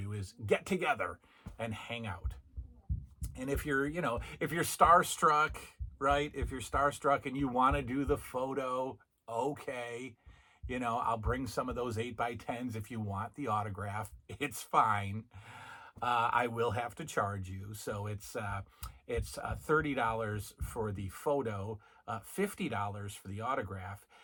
is get together and hang out. And if you're starstruck, right? If you're starstruck and you want to do the photo, okay. I'll bring some of those 8x10s if you want the autograph. It's fine. I will have to charge you. So it's $30 for the photo, $50 for the autograph.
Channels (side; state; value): both; identical; correlation 1.00